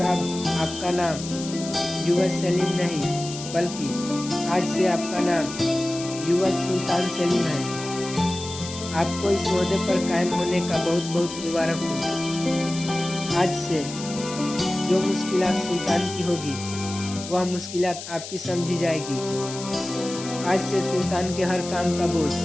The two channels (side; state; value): left; noise; hiss, 11 dB below the sound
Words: अब आपका नाम युवराज सलीम नहीं, बल्कि आज से आपका नाम युवराज सुल्तान सलीम है। आपको इस ओहदे पर कायम होने का बहुत बहुत मुबारक हो। आज से जो मुश्किलात सुल्तान की होगी वह मुश्किलात आपकी समझी जाएगी। आज से सुल्तान के हर काम का बोझ